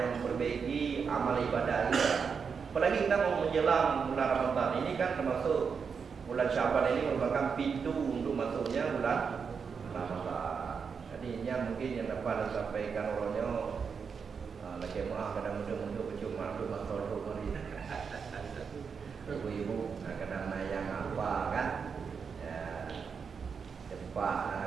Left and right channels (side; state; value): left; quieter; 6.0 dB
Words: yang memperbaiki amal ibadah kita. Apalagi kita mau menjelang bulan Ramadan ini kan termasuk bulan Syaban ini merupakan pintu untuk masuknya bulan Ramadan. Jadi ini mungkin yang dapat disampaikan orangnya lagi maaf kadang muda-muda bercuma untuk masuk hari. Ibu-ibu kadang yang apa kan?